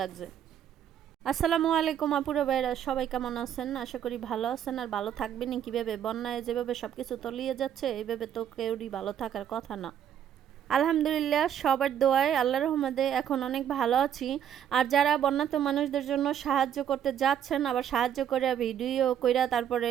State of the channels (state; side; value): quieter; left; 9.7 dB